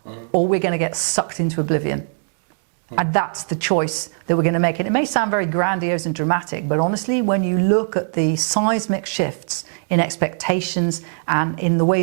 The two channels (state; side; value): silent; left; digital silence